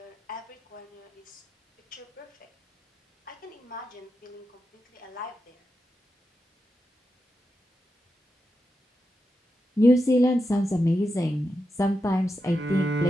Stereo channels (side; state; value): both; normal; correlation 0.88